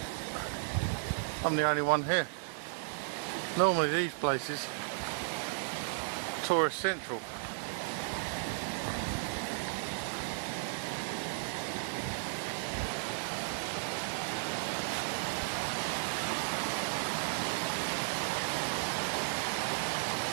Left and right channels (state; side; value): silent; left; 55 dB below the other